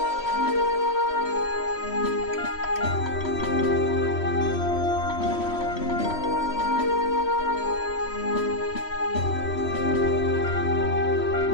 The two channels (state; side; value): late; right; 3.1 ms